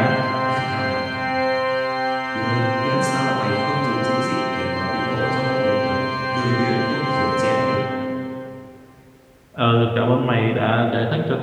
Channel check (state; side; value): identical; both; correlation 1.00